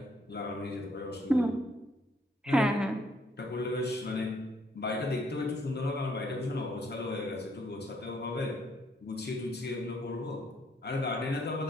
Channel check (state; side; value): normal; both; correlation 0.68